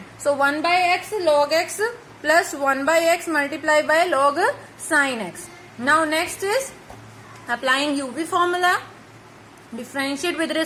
So 1 by x log x plus 1 by x multiplied by log sin x. Now next is applying uv formula, differentiate with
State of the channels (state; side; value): identical; both; correlation 1.00